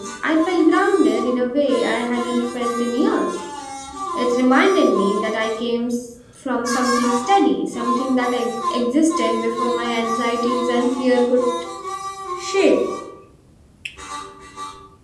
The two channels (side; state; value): both; identical; correlation 1.00